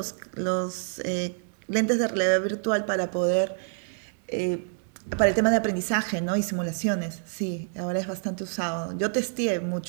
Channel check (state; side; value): silent; left; digital silence